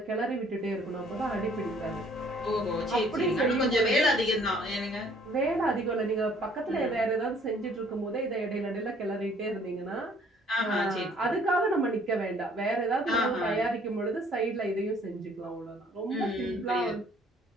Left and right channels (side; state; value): both; normal; correlation 0.59